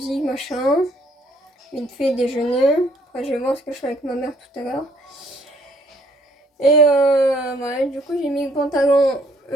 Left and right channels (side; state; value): both; normal; correlation 0.64